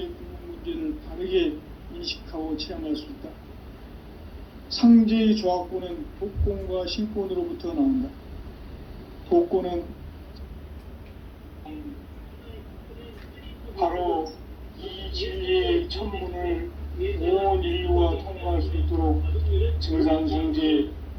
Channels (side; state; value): both; identical; correlation 1.00